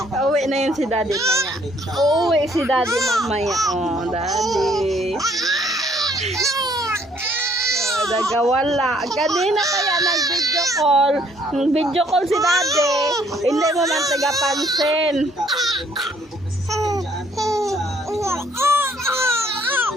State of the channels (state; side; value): normal; both; correlation 0.64